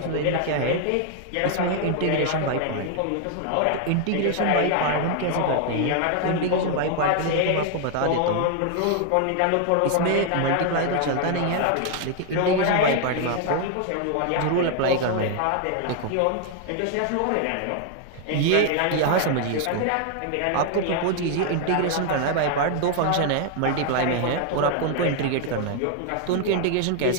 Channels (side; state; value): both; different; correlation 0.00